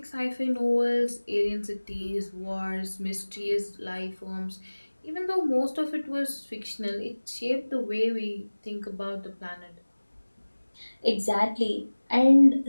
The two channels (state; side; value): inverted; both; correlation -1.00